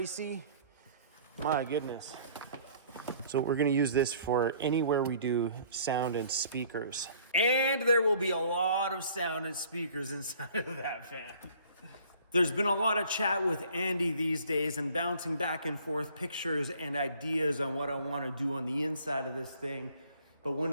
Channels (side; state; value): both; inverted; correlation -0.54